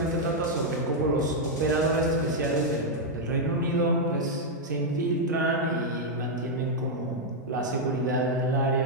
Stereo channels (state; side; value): normal; both; correlation -0.02